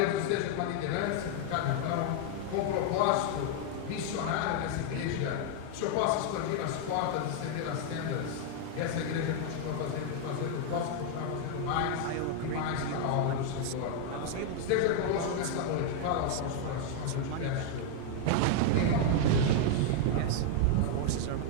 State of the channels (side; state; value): both; different; correlation 0.00